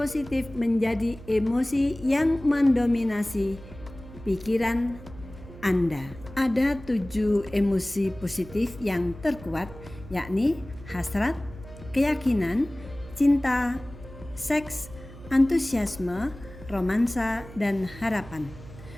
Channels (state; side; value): noise; right; hum, 17 dB below the sound